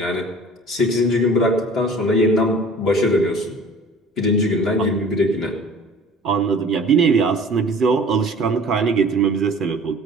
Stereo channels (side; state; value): both; normal; correlation 0.46